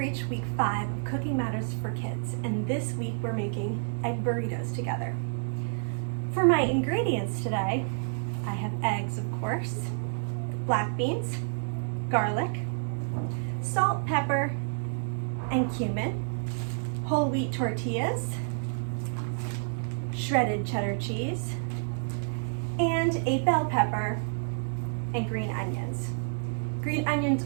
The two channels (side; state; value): left; silent; digital silence